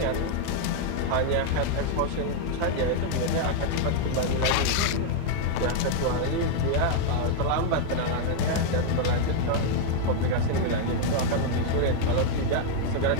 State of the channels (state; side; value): different; both; correlation 0.00